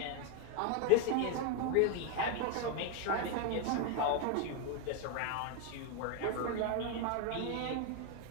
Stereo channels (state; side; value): different; both; correlation 0.01